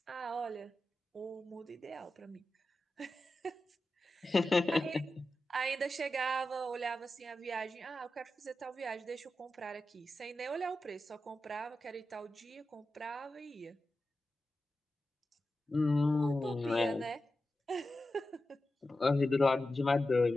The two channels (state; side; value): normal; both; correlation 0.92